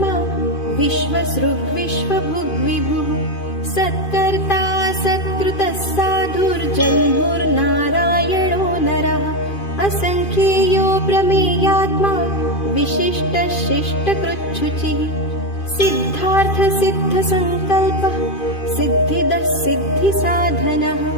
विश्वसृग्विश्वभुग्विभुः सत्कर्ता सत्कृतः साधुर्जन्मुर्नारायणो नरः असङ्ख्येयो प्रमेयात्मा विशिष्टः शिष्टकृच्छुचिः सिद्धार्थ सिद्धसङ्कल्पः सिद्धिदः सिद्धिसाधनः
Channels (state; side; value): late; right; 2.5 ms